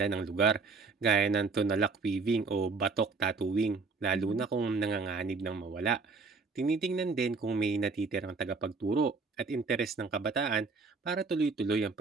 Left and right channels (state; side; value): quieter; left; 4.4 dB